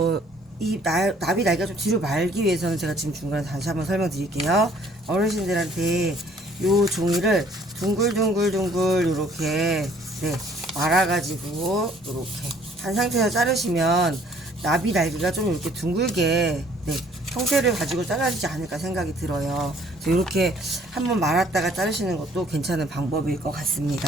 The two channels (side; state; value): both; normal; correlation 0.59